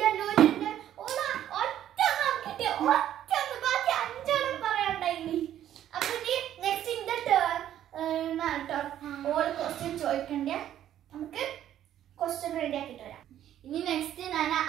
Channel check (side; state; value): left; quieter; 11.4 dB